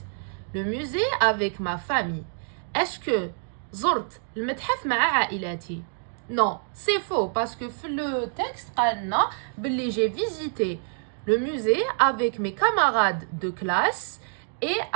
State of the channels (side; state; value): left; silent; 61 dB below the other